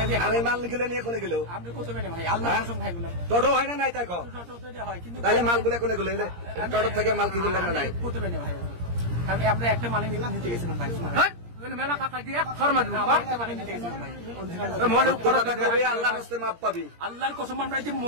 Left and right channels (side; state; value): left; late; 17 ms